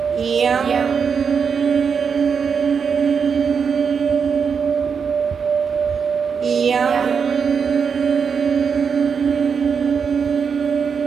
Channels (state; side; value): quieter; left; 6.3 dB